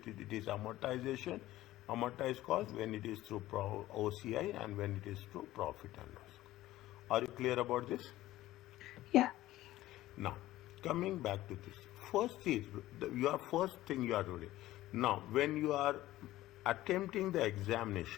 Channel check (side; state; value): right; quieter; 15.7 dB